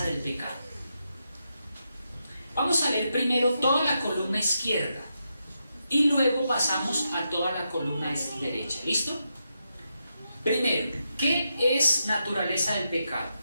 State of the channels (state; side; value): inverted; both; correlation -0.85